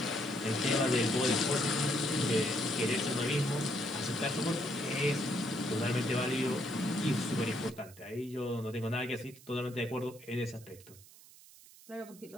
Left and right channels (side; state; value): right; noise; hiss, 21 dB below the sound